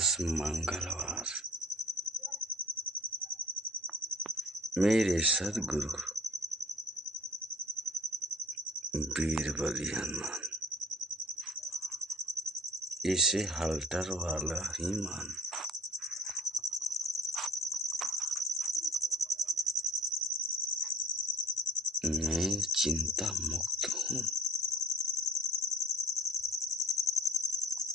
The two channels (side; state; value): both; normal; correlation 0.50